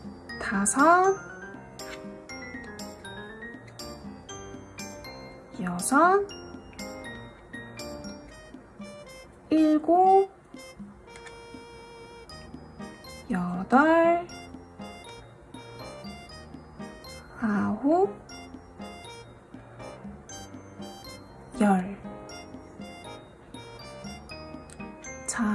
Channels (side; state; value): both; identical; correlation 1.00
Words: 다섯, 여섯, 일곱, 여덟, 아홉, 열.